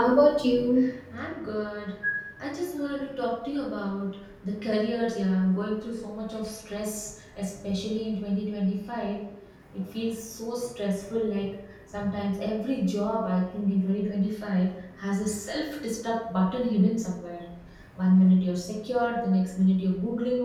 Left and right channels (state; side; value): identical; both; correlation 1.00